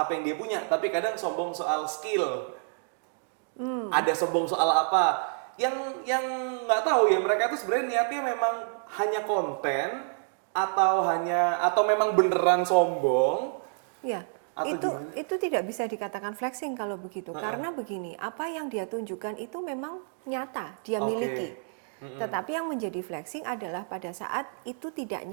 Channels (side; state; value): left; silent; 59 dB below the other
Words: yang dia punya, tapi kadang sombong soal skill. Ada sombong soal apa? Yang nggak tahu ya, mereka tuh sebenarnya niatnya memang hanya konten atau memang beneran sombong. Ya, itu tidak bisa dikatakan flexing kalau begitu. Karena begini, apa yang dia tunjukkan itu memang nyata, dia miliki. Tetapi yang menjadi flexing adalah pada saat itu tidak